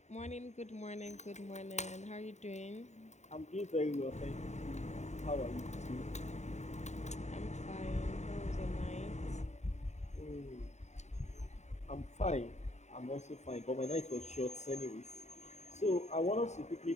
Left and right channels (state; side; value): late; right; 0.33 ms